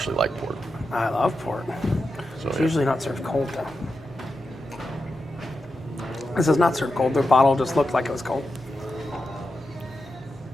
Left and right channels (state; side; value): normal; both; correlation 0.89